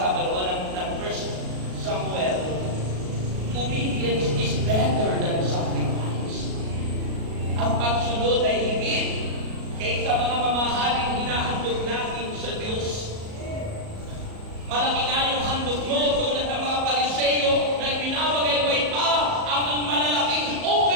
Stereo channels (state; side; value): late; left; 37 ms